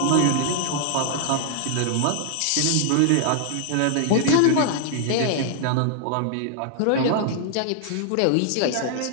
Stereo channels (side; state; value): both; different; correlation 0.00